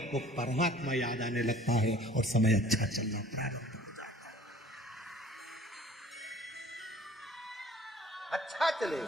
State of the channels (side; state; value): both; normal; correlation 0.51